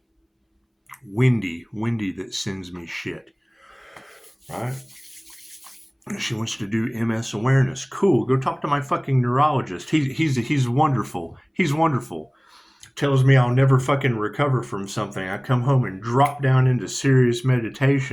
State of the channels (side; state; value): both; identical; correlation 1.00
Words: Windy that sends me shit, right? She wants to do MS awareness. Cool. Go talk to my fucking neurologist. He's wonderful. He's wonderful. Tells me I'll never fucking recover from something. I come home and drop down into serious